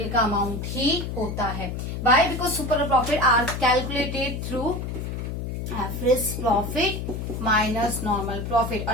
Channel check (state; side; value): noise; left; hum, 5 dB below the sound